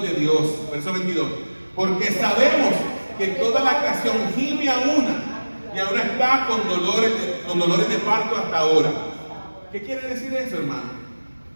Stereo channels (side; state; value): both; inverted; correlation -1.00